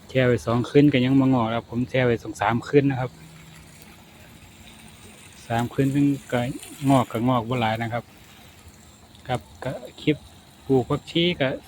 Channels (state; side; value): identical; both; correlation 1.00